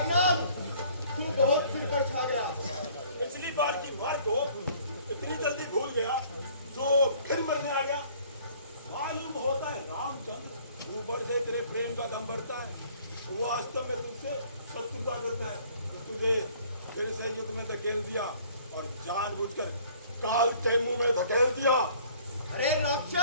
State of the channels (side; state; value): both; inverted; correlation -0.56